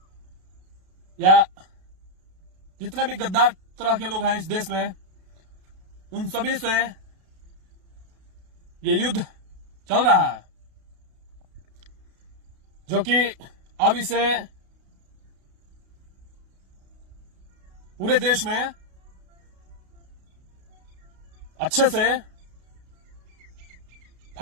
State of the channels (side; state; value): left; late; 32 ms